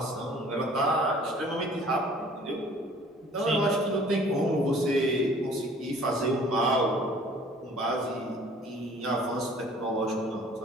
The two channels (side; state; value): both; normal; correlation 0.52